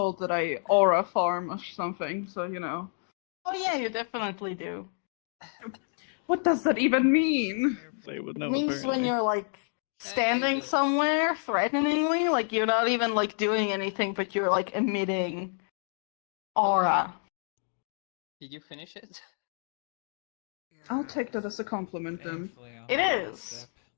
that I aura farm or something, so you know. Oh yeah, you definitely do. What does that even mean? They would It know. means when apparently. you're like standing somewhere threateningly, like you're not even like doing anything, but you're like emitting aura. Did you finish it? I'll take that as a compliment then. Thankfully, I'll It have a is. sip.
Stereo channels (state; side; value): silent; right; 57 dB below the other